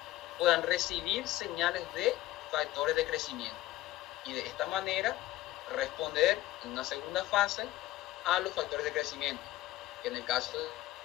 puedan recibir señales de factores de crecimiento y de esta manera responder en una segunda fase a los factores de crecimiento, que en el caso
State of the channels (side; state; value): right; quieter; 16.1 dB